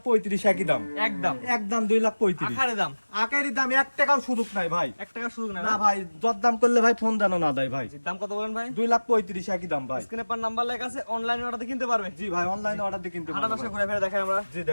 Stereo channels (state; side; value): inverted; both; correlation -1.00